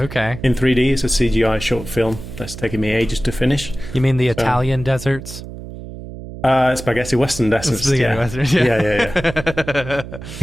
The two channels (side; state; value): right; noise; hum, 12 dB below the sound